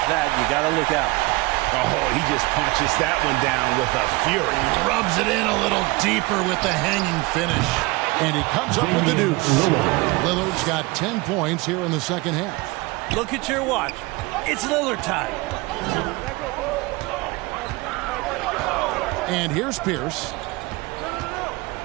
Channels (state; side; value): quieter; left; 23.5 dB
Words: that, you got to look out. Oh, he just punches that one down with a fury. He rubs it in a little deeper with the hanging finish. And he comes up with the deuce. Lillard's got 10 points here in the second half. Look at your watch. It's Lillard time. And here's Pierce.